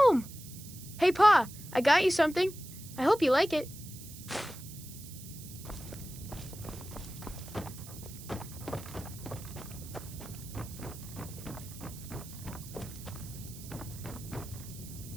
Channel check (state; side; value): noise; right; hiss, 15 dB below the sound